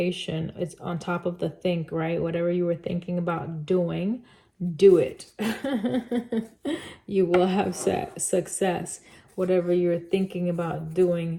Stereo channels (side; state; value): both; identical; correlation 1.00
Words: It's on top of the think, right? Whatever you were thinking about doing, do it. You will have success. Whatever you're thinking about